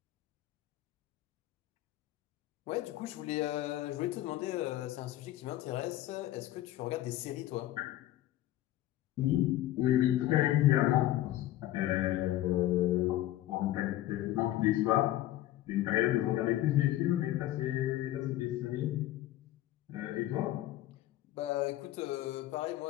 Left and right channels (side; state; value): right; quieter; 14.5 dB